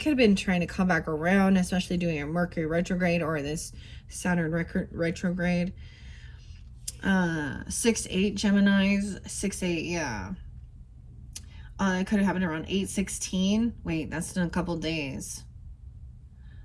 have been trying to come back around, especially doing a Mercury retrograde or this Saturn retrograde. 6-8 Geminis, 6-8, yeah. It could have happened around 8:16. Wait, that's in a couple days.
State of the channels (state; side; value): identical; both; correlation 1.00